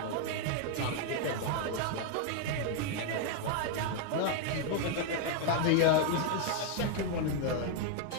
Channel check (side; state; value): both; different; correlation 0.00